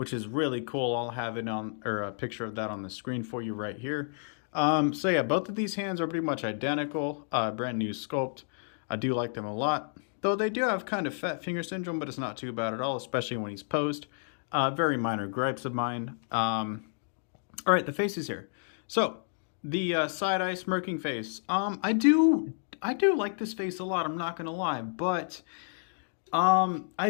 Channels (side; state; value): right; silent; digital silence